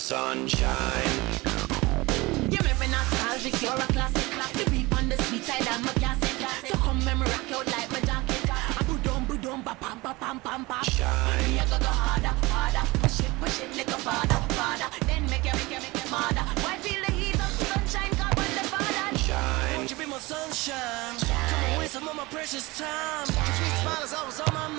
You make me nostalgic, you're a classic. The beat on the sweet side, I'm a classic. So come and rock out like my jacket. Boom, ba pam pa pam pam pam. Shine. Me a go harder, harder. Push it like a father, father. Then make you harder. Why feel the heat of the sunshine? God want the father. Shine. Won't you be my sunshine? Come away some of my precious time. Your sweet smile is always on my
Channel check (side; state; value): left; quieter; 22.3 dB